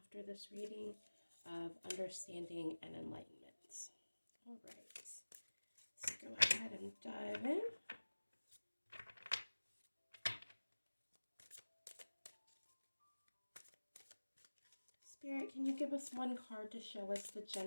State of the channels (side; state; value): both; inverted; correlation -1.00